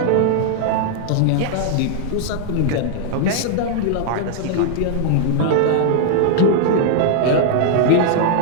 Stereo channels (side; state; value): both; different; correlation -0.01